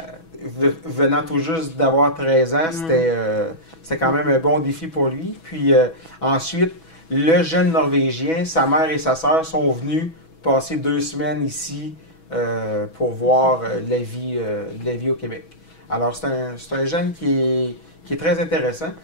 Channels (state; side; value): late; right; 6.1 ms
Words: venant tout juste d'avoir 13 ans, c'était quand même un bon défi pour lui. Puis, ensuite, le jeune Norvégien, sa mère et sa sœur sont venus passer 2 semaines ici pour voir la vie au Québec. Alors, c'est un jeune qui est très intéressant.